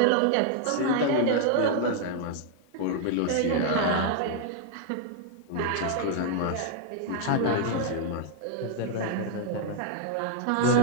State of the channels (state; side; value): different; both; correlation 0.00